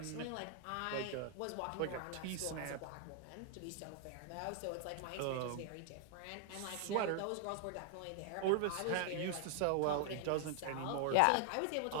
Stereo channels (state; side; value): different; both; correlation 0.00